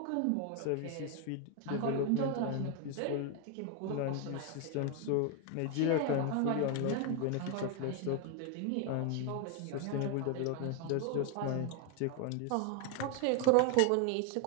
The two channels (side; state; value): both; different; correlation 0.01